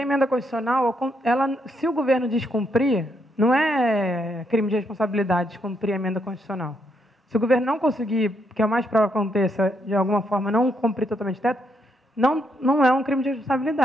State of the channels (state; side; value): normal; both; correlation 0.76